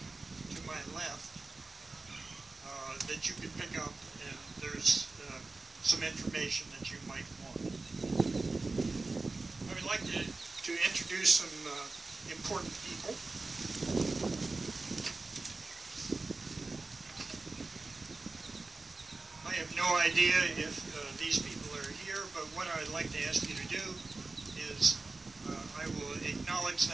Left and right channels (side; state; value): left; quieter; 3.5 dB